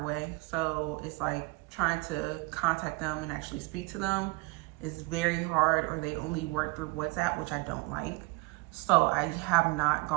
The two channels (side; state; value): left; quieter; 25.6 dB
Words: away. So it's like trying to contact them and actually speak to them is very hard, or they only work through WhatsApp, which I don't like. So I have not